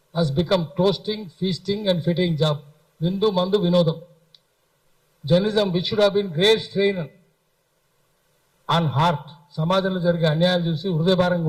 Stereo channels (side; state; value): both; identical; correlation 1.00